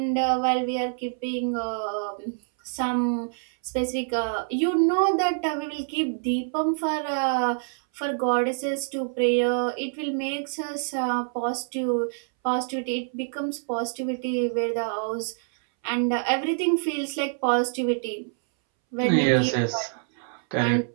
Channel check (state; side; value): silent; left; 61 dB below the other